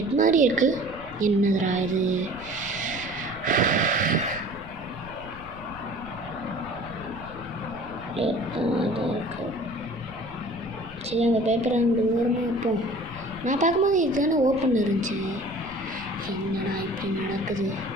மாதிரி இருக்கு. என்னதுடா இது? சரி, அந்த பேப்பரை அங்கே ஓரமாக வைப்போம். நான் பார்க்கும்போது இதுதானே ஓப்பன் இருந்துச்சு. என்னடா இப்படி நடக்குது?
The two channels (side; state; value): left; noise; rumble, 16 dB below the sound